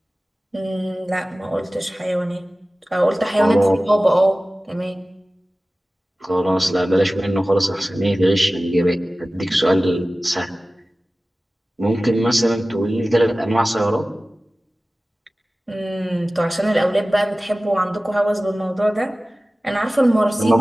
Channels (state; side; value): normal; both; correlation 0.97